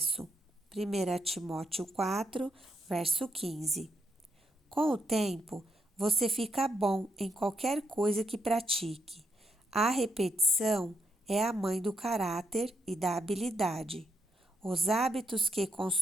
1 Timóteo 4, verso 15. Com o tempo, você fica bom em qualquer coisa que pratique. A repetição é a mãe do caráter e da habilidade. Os hábitos que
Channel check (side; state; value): both; normal; correlation 0.79